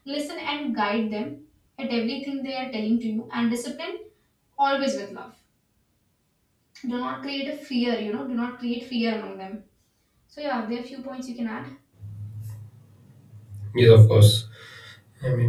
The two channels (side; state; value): both; identical; correlation 1.00